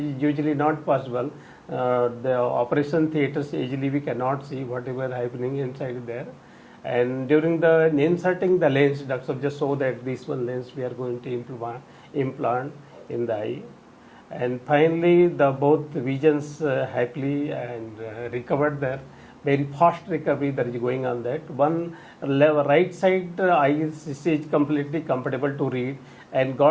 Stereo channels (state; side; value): identical; both; correlation 1.00